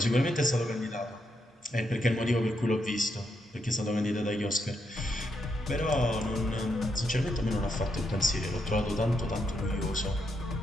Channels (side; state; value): both; normal; correlation 0.80